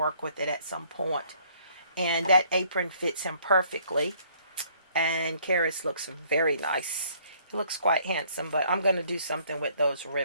with it at some point. And that apron fits him perfectly. And Caris looks very nice. He looks quite handsome, but I'm going to do something with those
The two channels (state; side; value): inverted; both; correlation -0.62